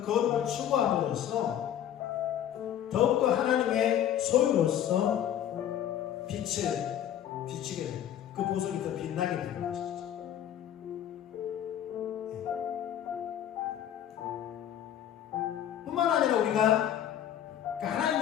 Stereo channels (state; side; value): quieter; right; 10.5 dB